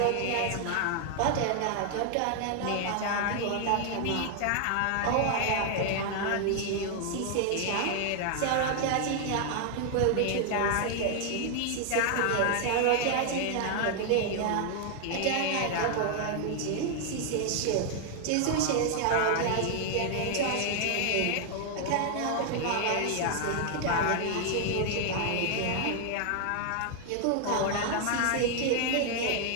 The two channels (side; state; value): both; different; correlation 0.00